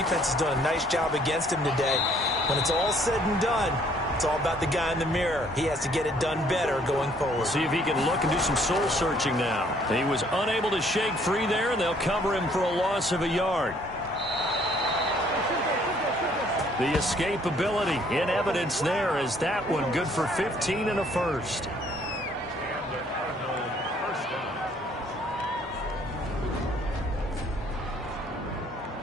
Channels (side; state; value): both; normal; correlation 0.62